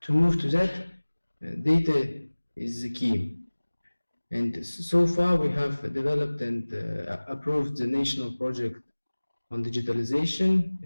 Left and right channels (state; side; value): inverted; both; correlation -1.00